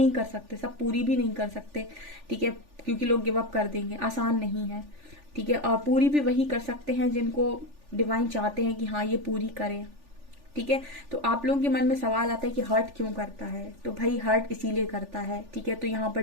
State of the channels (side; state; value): left; late; 3.4 ms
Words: कर सकते, सब पूरी भी नहीं कर सकते। ठीक है, क्योंकि लोग गिव अप कर देंगे, आसान नहीं है। ठीक है, और पूरी भी वही कर सकते हैं जिनको डिवाइन चाहते हैं कि हाँ ये पूरी करें। ठीक है, तो आप लोगों के मन में सवाल आता है कि हर्ट क्यों करता है? तो भाई हर्ट इसीलिए करता है। ठीक है, तो यहाँ पर